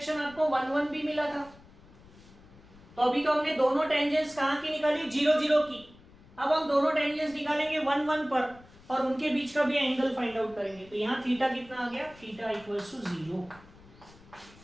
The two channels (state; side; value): noise; left; rumble, 24 dB below the sound